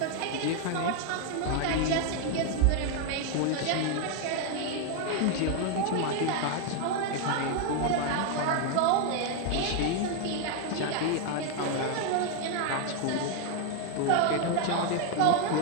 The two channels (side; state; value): both; different; correlation 0.00